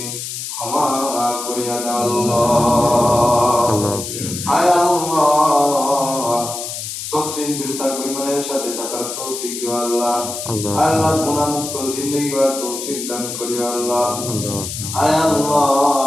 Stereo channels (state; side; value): noise; left; hiss, 7 dB below the sound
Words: ক্ষমা করিয়া দাও আল্লাহ। আয় আল্লাহ, সত্যি বেঁচে থাকবো ইমানের সাথে থাকার তৌফিক দিও আল্লাহ। আল্লাহ, গুনাহ মুক্ত জিন্দেগি গড়ার তৌফিক দান করিও আল্লাহ। আয়